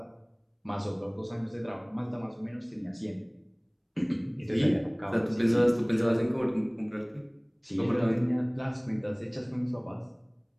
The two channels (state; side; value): identical; both; correlation 1.00